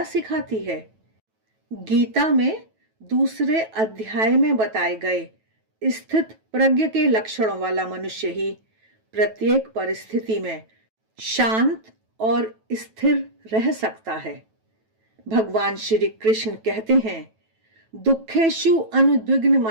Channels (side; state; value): left; late; 9.2 ms